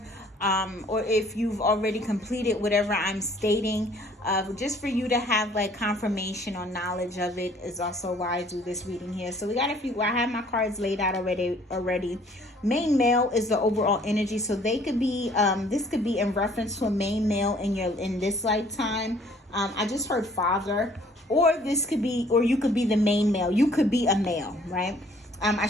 or if you've already completed whatever I'm stating, just for you to have like confirmation or knowledge of it is also why I do this reading here. So we got a few. I have my cards laid out already. Main male is the overall energy, so they could be this could be in reference to a main male in this lifetime. I just heard father, or this could be, or you could be the main male. You could be a male, right?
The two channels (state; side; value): normal; both; correlation 0.58